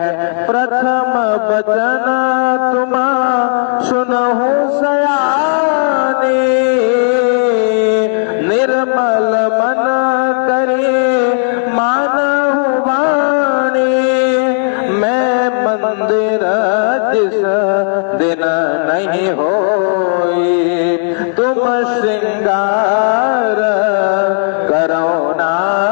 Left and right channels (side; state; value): right; silent; digital silence